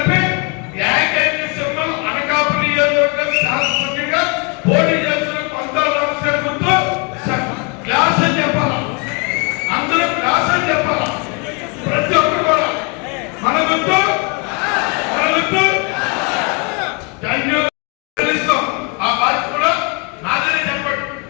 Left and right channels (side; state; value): right; quieter; 33.4 dB